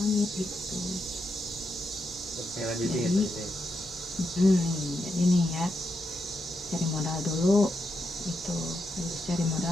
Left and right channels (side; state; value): both; normal; correlation 0.83